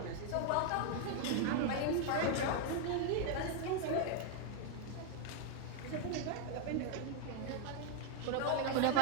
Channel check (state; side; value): different; both; correlation 0.00